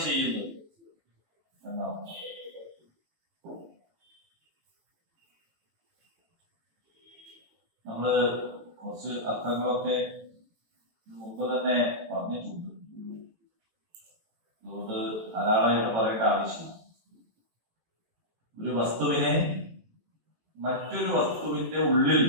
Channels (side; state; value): left; late; 18 ms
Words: ചെയ്യുന്നത് എന്നാണ്. നമ്മള് കുറച്ച് അർത്ഥങ്ങളൊക്കെ മുമ്പ് തന്നെ പറഞ്ഞിട്ടുണ്ട്, അതുകൊണ്ട് ധാരാളമായിട്ട് പറയേണ്ട ആവശ്യമില്ല. ഒരു വസ്തുവിനെ മറ്റൊരു വസ്തുവിന്റെ ഉള്ളിൽ